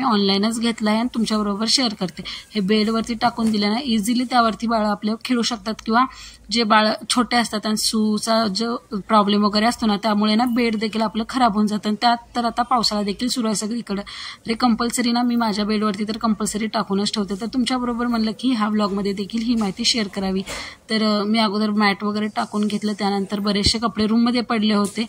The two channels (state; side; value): identical; both; correlation 1.00